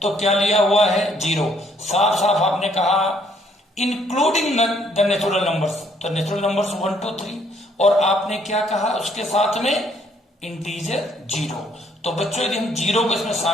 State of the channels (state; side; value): normal; both; correlation 0.66